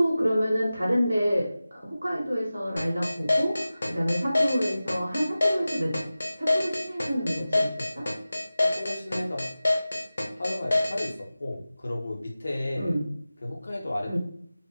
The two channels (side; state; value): both; inverted; correlation -0.96